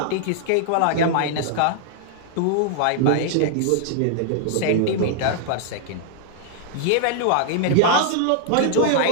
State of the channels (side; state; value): both; different; correlation -0.01